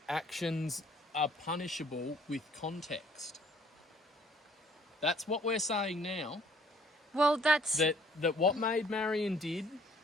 Actions are punishable with context. That's what we're saying now. Well, that's... That what Maid Marian did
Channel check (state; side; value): normal; both; correlation 0.60